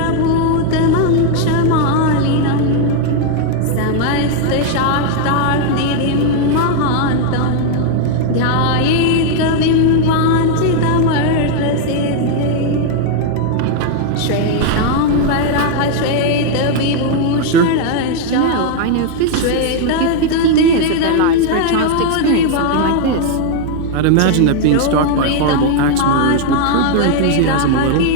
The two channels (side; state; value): both; different; correlation 0.00